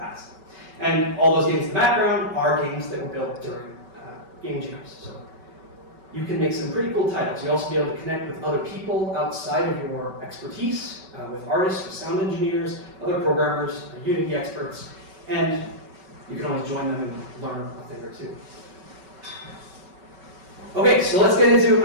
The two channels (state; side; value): late; left; 5.3 ms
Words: And all those games in the background are games that were built during game jams. So you can make some pretty cool titles. You'll also be able to connect with other people outside of your expertise, with artists, with sound engineers, other programmers, Unity experts, and you can always join them and learn a thing or two. Okay, so let's get into